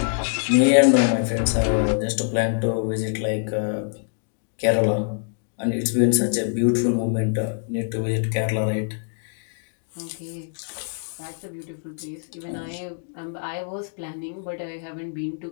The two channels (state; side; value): silent; right; digital silence